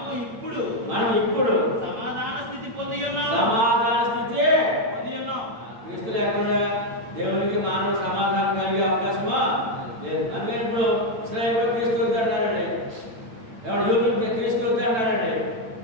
ఇప్పుడు సమాధాన స్థితి పొంది ఉన్నాం. క్రీస్తు లేకుండా దేవునికి మానవ సమాధానం కలిగే అవకాశమా లేదు. అందుకని ఇప్పుడు ఇశ్రాయేలు క్రీస్తు అన్నారండి, ఎవరు యూదులకి క్రీస్తు అన్నారండి.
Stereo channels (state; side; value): late; left; 8.9 ms